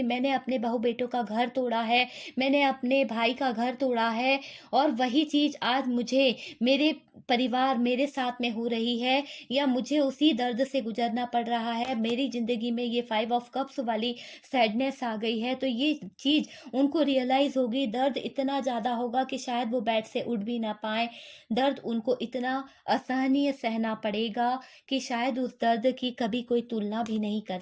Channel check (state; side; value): identical; both; correlation 1.00